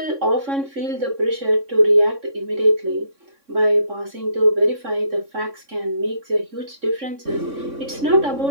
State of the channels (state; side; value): late; left; 3.6 ms